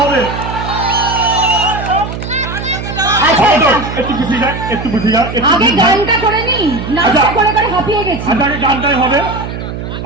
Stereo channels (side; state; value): right; noise; hum, 7 dB below the sound